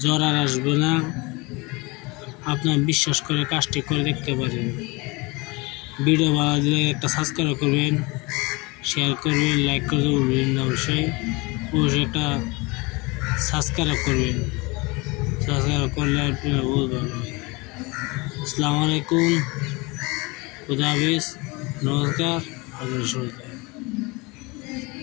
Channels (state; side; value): quieter; right; 25.9 dB